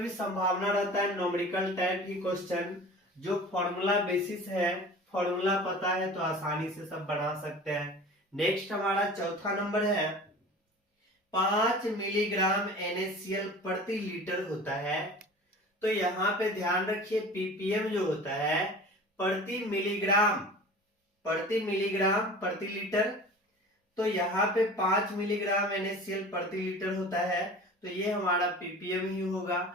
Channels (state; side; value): normal; both; correlation 0.40